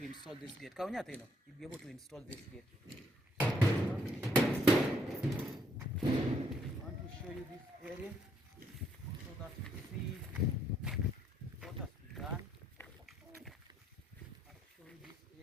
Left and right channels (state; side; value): normal; both; correlation 0.70